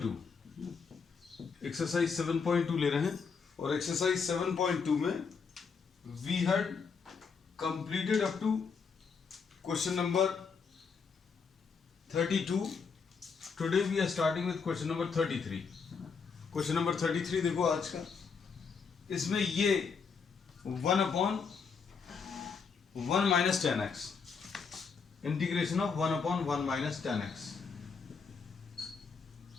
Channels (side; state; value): right; quieter; 5.5 dB